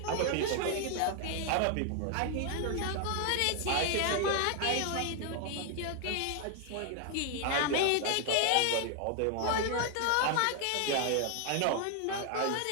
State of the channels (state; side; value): different; both; correlation 0.00